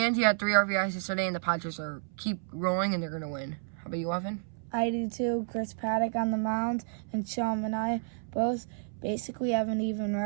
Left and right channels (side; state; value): left; silent; 57 dB below the other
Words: he had 3 RBIs yesterday, and the Padres keep rolling, and they're going to win. How about you, Evan? I do too. Chris Paddock on the mound and Sean Manaea both basically have an even